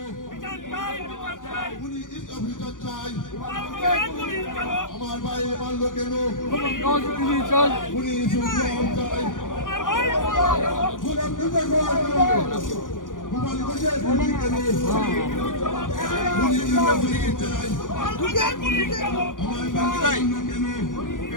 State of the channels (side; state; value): right; late; 0.88 ms